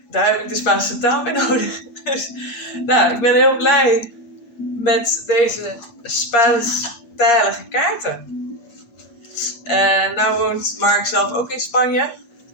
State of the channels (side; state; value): right; late; 8.4 ms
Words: daar heb ik de Spaanse taal bij nodig. Dus nou, ik ben heel blij met deze Spaanstalige kaarten. Nou woont Mark zelf ook in Spanje.